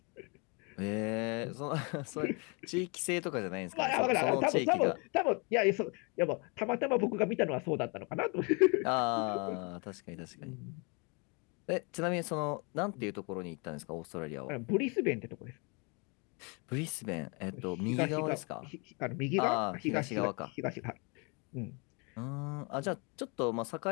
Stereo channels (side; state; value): right; quieter; 32.3 dB